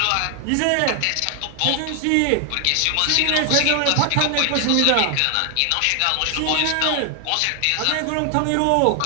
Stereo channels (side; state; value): both; different; correlation 0.00